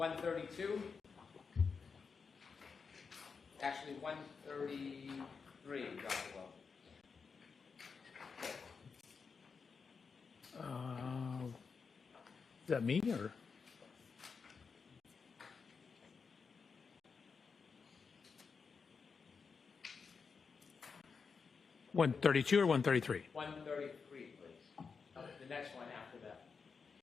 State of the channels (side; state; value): right; quieter; 5.4 dB